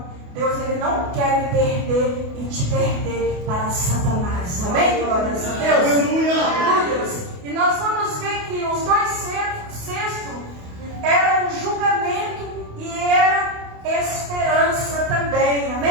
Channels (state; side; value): late; left; 28 ms